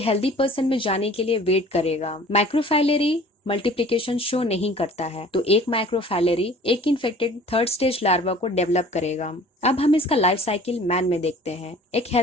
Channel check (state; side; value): normal; both; correlation 0.48